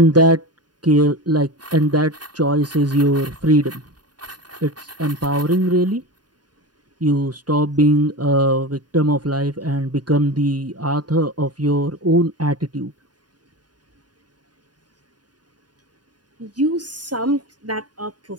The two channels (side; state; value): left; late; 0.70 ms